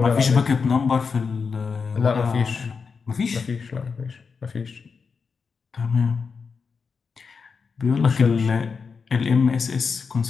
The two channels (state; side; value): quieter; right; 5.4 dB